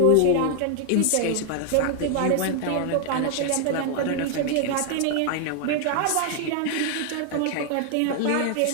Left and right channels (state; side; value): different; both; correlation 0.00